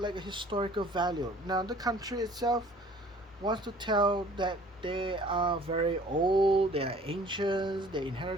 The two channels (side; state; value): both; normal; correlation 0.52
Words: like a historical value. Now the country itself wants to tell that they are very old, they are ancient, they